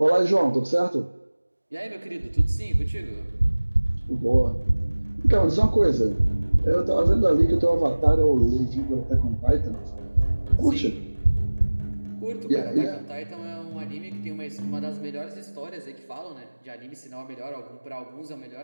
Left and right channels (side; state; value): both; inverted; correlation -1.00